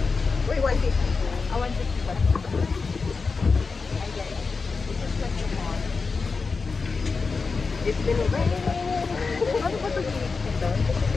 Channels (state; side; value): quieter; right; 4.5 dB